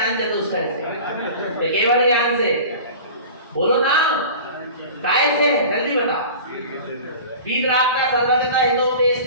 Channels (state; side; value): inverted; both; correlation -0.38